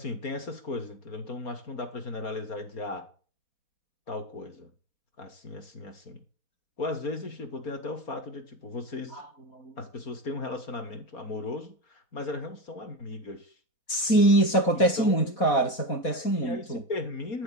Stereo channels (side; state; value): right; late; 4.2 ms